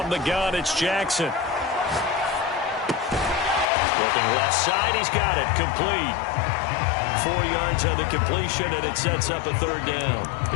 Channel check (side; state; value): right; drops out; at 3.7 s